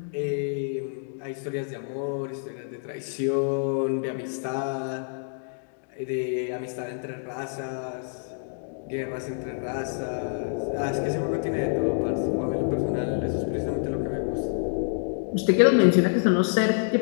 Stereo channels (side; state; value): right; silent; digital silence